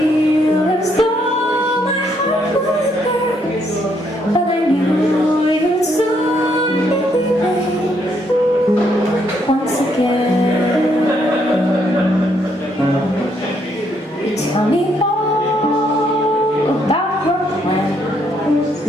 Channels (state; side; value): normal; both; correlation 0.72